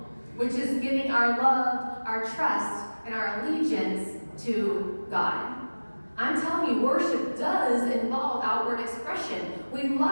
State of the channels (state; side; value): inverted; both; correlation -1.00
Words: which is giving our love, our trust, and our allegiance to God. I'm telling you, worship does involve outward expression. We